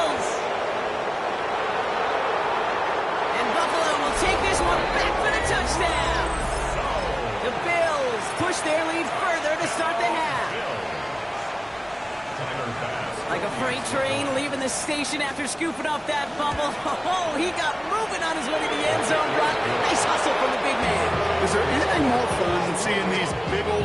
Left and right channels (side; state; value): both; identical; correlation 1.00